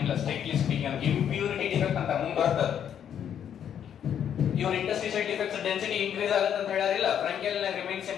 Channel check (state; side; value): quieter; right; 9.1 dB